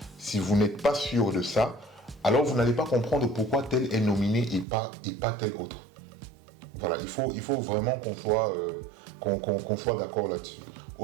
si vous n'êtes pas sûr de ça, alors vous n'allez pas comprendre pourquoi tel est nominé et pas tel autre. Voilà, il faut vraiment qu'on soit d'accord là-dessus.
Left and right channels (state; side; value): drops out; left; at 4.7 s